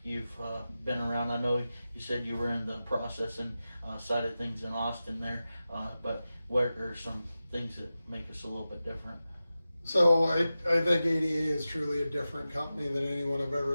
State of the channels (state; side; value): inverted; both; correlation -0.94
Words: you've been around? I know you said you were in the processing side of things in Austin there, but what are some things that make us a little bit different? So I think ADA is truly a different company than anyone I've